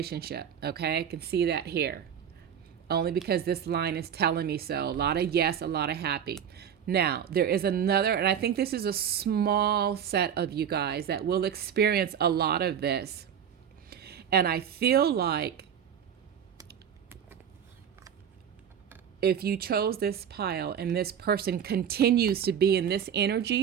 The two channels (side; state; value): left; quieter; 8.5 dB